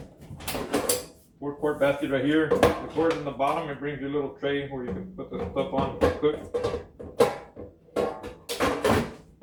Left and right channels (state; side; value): identical; both; correlation 1.00